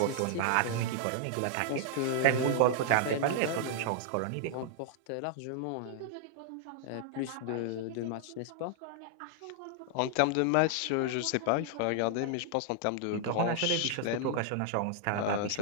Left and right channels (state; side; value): different; both; correlation -0.01